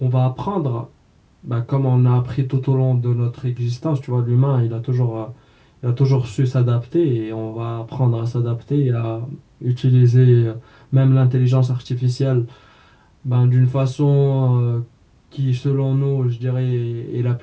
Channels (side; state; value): both; identical; correlation 1.00